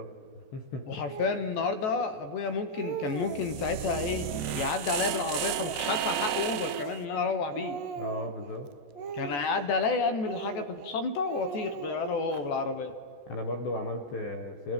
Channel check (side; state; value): right; late; 14 ms